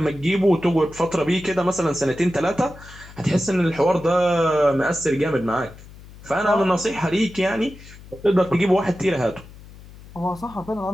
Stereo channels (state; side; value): noise; left; hum, 19 dB below the sound